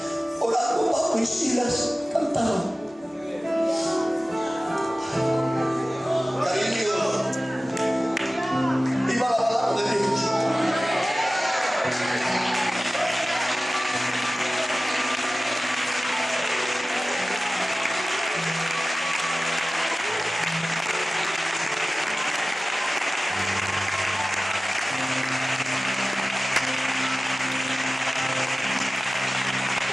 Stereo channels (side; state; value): both; normal; correlation 0.96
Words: orando Pablo y Silas cantaban. Cariño, viva la palabra de Dios.